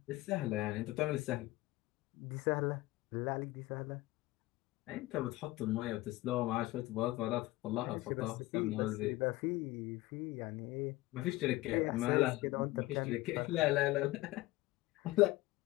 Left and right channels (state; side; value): quieter; right; 18.8 dB